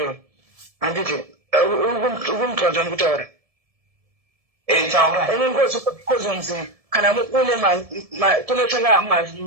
handiti ukumutwadza ndikutaura kozonzi kana une kunotanga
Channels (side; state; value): left; late; 1.7 ms